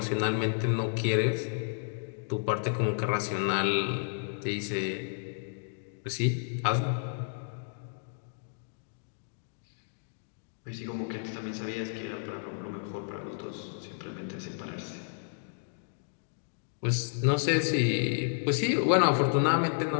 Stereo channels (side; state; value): right; silent; digital silence